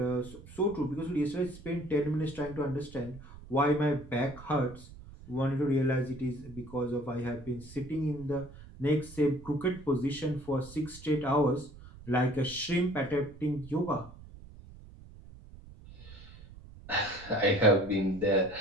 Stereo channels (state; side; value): noise; right; rumble, 18 dB below the sound